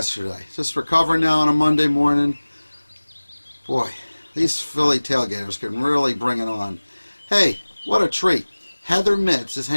Just recovering now on a Monday morning. Boy, these Philly tailgaters can really bring it on. Hey, what a treat. Heather Mitz is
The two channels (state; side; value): inverted; both; correlation -1.00